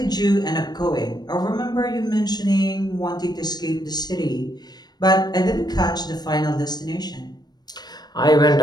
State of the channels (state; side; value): late; right; 0.20 ms